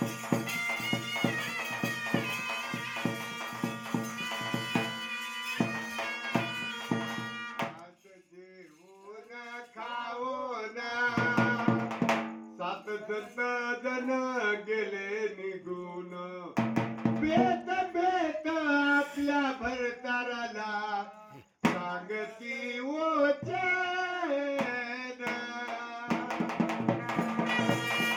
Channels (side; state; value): both; identical; correlation 1.00